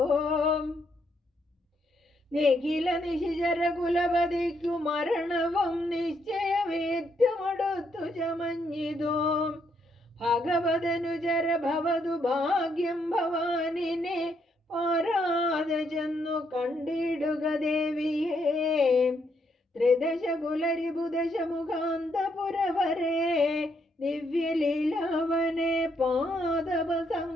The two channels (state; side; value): normal; both; correlation 0.74